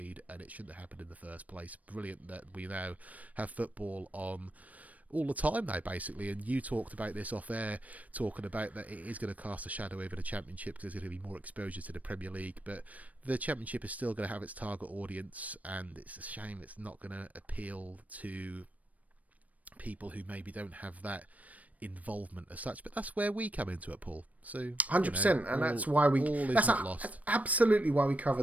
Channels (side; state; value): left; late; 0.070 ms